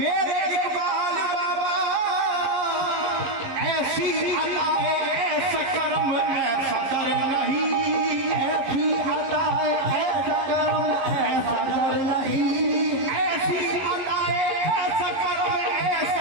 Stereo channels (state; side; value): late; left; 11 ms